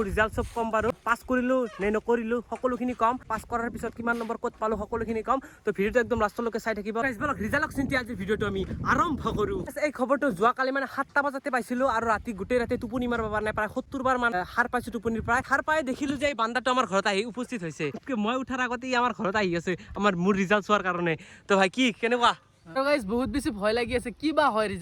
ৰিজাল্ট সব কম বাৰু পাস কৰিলো নে নকৰিলো সকলোখিনি কম পাস কৰাৰ পিছত কিমান নম্বৰ কত পালো সকলোখিনি কম তো ভিডিওটো একদম লাষ্টলৈকে চাই থাকিব গাইজ বলক ৰিজাল্টক চিন্তি আজি ভিডিওটো আমি আৰম্ভ কৰো এই খবৰটো যোৱাকালি মানে 7টা বজাতে পাইছিলো আৰু ৰাতি গোটেই ৰাতি টোপনি মাৰিব পৰা নাই প্ৰায় 70 বাৰ মান হাৰ পাইছো টোপনিৰ প্ৰায় হাৰ পাই দেখিলো যে এই বান্দাটো আমাৰ ঘৰত আহি উপস্থিত হৈছে মই উঠাৰ আগতে আমাৰ ঘৰত আহি আছে আমাৰ মোৰ ৰিজাল্ট চোৱাৰ কাৰণে তো ভাই কি কেনেকুৱা গাইজ বহুত বেছি ভয় লাগি আছে কি বা হয়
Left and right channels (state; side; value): identical; both; correlation 1.00